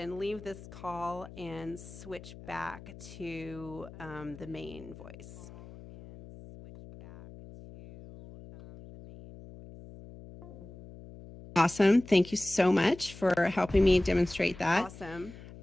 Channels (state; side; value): noise; left; hum, 16 dB below the sound